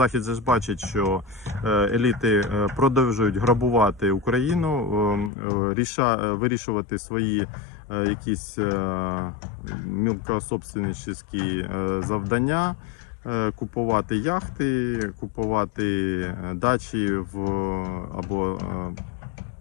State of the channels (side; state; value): right; drops out; at 5.3 s